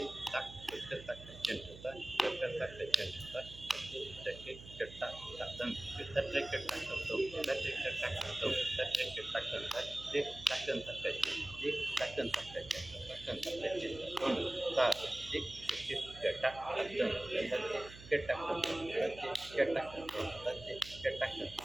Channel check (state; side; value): noise; right; hum, 16 dB below the sound